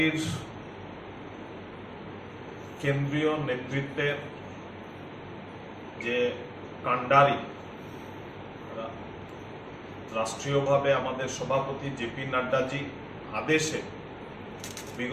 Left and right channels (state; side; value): identical; both; correlation 1.00